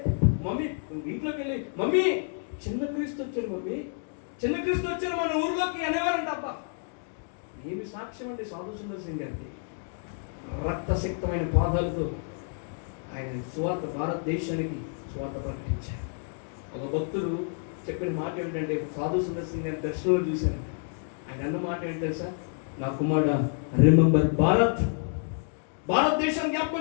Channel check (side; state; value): right; silent; 59 dB below the other